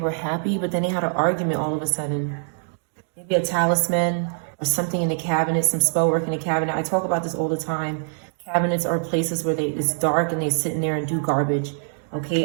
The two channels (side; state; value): left; silent; digital silence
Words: happy, but then they had an argument all of a sudden. Maybe a talisman or something in the cabinet, some spell work in the cabinet. I talk about this all the time. Cabinets are places where it's dark and they sit in there and do garbage.